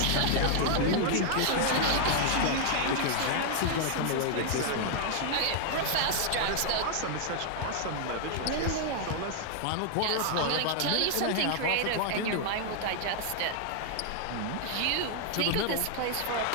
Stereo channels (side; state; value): both; different; correlation -0.01